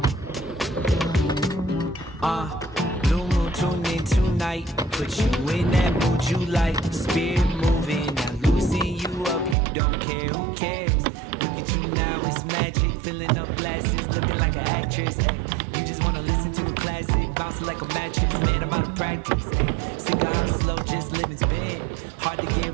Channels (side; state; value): left; drops out; at 9.6 s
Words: Blue moon tune in tonight. Put you in that mood you like. Spirit moving, now loosen you up. You don't care, who cares? Look at you now, it's magic. Filling up glasses, looking like an actress. Ay, you just wanna listen to a classic, bouncing like a mattress. Man, I'm out of practice. Ay, sick of how slow, just living spin. Hard to